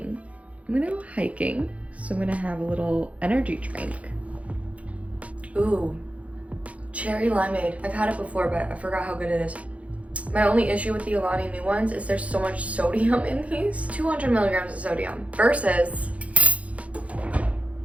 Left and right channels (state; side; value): late; left; 0.065 ms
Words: I'm gonna go hiking. So I'm gonna have a little energy drink. Ooh, cherry limeade. I've had it before, but I forgot how good it is. My only issue with the Alani new ones is there's so much sodium in these. 200 milligrams of sodium versus